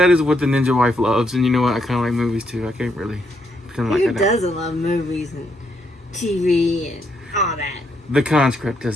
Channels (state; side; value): normal; both; correlation 0.76